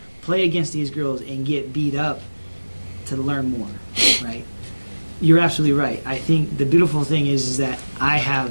play against these girls and get beat up to learn more, right? You're absolutely right. I think the beautiful thing is that I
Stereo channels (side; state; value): both; inverted; correlation -1.00